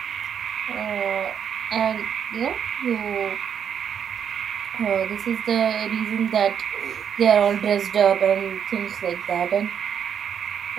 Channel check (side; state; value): left; quieter; 8.2 dB